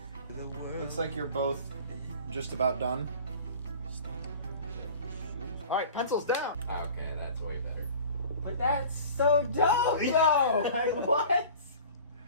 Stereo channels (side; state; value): both; inverted; correlation -0.42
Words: The world. Looks like you're both just about done. Alright, pencils down! Okay, that's way better. But that's so dope, though. Like what?